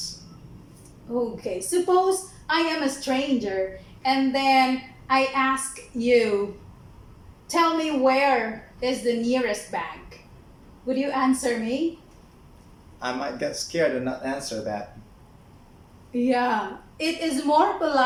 Okay, suppose I am a stranger and then I ask you, tell me where is the nearest bank. Would you answer me? I might get scared and not answer that. Yeah, it is more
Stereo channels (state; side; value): identical; both; correlation 1.00